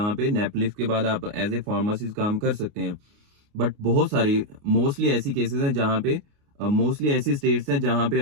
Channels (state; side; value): late; left; 29 ms